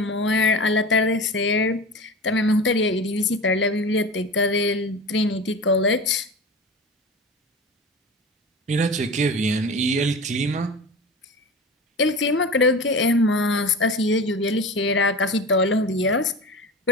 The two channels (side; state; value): both; normal; correlation 0.32